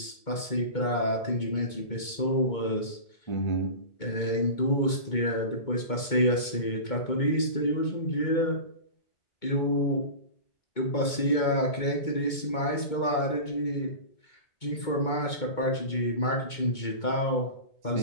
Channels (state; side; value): late; right; 2.2 ms